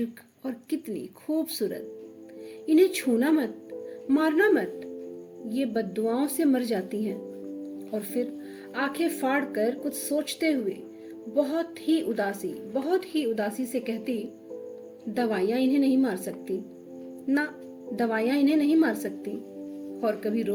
और कितनी खूबसूरत। इन्हें छूना मत, मारना मत, ये बद्दुआओं से मर जाती हैं। और फिर आंखें फाड़ कर कुछ सोचते हुए बहुत ही उदासी से कहती, दवाइयां इन्हें नहीं मार सकती ना, दवाइयां इन्हें नहीं मार सकती। और कभी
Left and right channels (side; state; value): both; identical; correlation 1.00